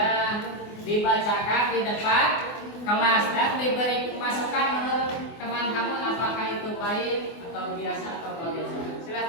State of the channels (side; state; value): right; late; 24 ms